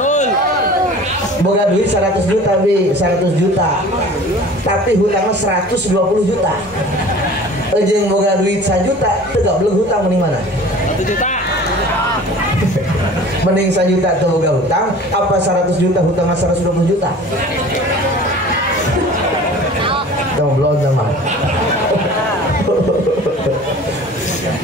Boga duit 100 juta bi, 100 juta. Tapi hutangnya 120 juta. Jeung boga duit 1 juta teu gableng hutang mending mana? 1 juta. Mending 1 juta teu boga hutang apa 100 juta hutangnya 120 juta? Goblok sama.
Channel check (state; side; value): normal; both; correlation 0.43